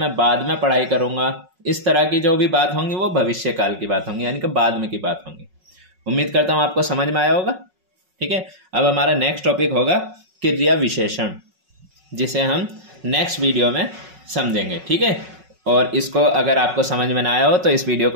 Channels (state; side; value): late; left; 5.4 ms